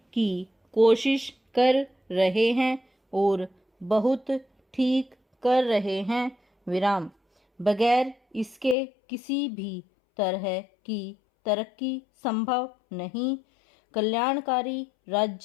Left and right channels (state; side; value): drops out; right; at 8.8 s